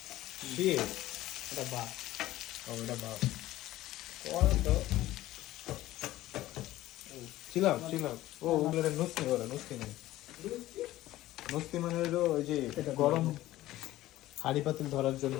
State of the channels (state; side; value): quieter; right; 15.7 dB